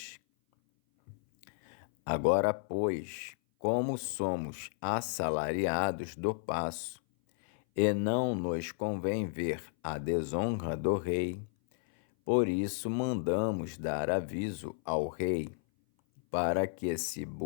Agora, pois, como somos assalariados do paço, e não nos convém ver a desonra do rei, por isso mandamos dar aviso ao rei, para que se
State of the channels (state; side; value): silent; right; 56 dB below the other